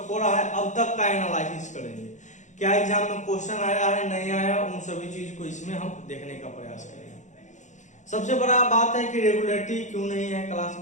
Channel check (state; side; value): late; right; 0.35 ms